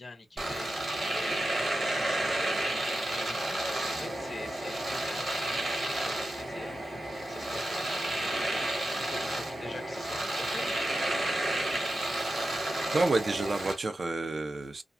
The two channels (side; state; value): both; normal; correlation 0.92